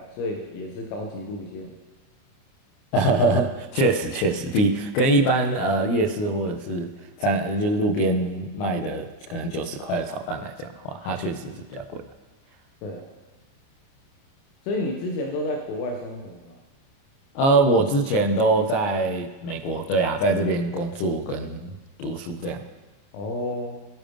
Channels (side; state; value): right; late; 29 ms